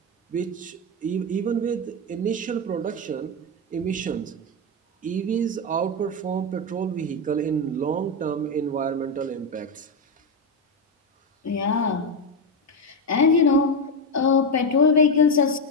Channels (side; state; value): both; normal; correlation 0.10